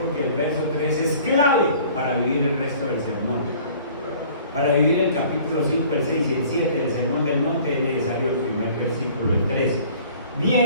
el verso 3 es clave para vivir el resto del sermón. Para vivir el capítulo 5, el 6 y el 7 del Sermón del Monte es necesario el primer versículo, el 13.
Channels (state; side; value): inverted; both; correlation -0.51